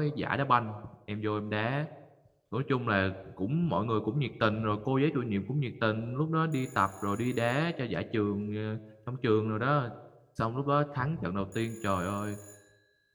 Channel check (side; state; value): both; identical; correlation 1.00